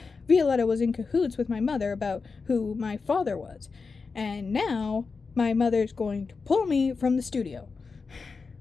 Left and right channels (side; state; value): right; quieter; 4.7 dB